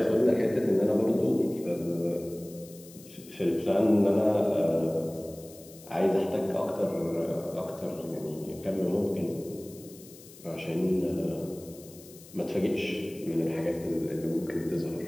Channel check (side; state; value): left; noise; hiss, 20 dB below the sound